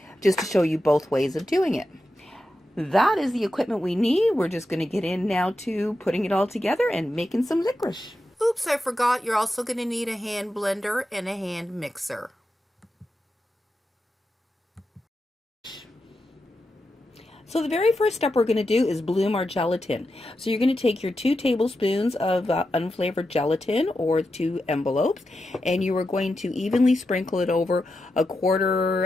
just to show you both ways of doing it. that is the equipment we need. We're just going to get in now to putting it all together and making some licorice. Oops, I forgot. You're also going to need a hand blender and a hand mixer. So the very first step we're going to do is bloom our gelatin. So you're going to take your 2 tablespoons of unflavored gelatin, or 2 envelopes, and you are going to evenly sprinkle it over a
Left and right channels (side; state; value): both; normal; correlation 0.89